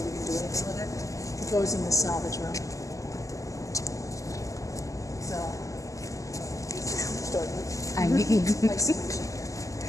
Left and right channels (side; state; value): right; late; 0.16 ms